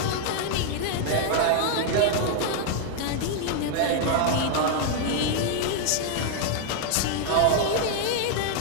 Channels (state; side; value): different; both; correlation 0.00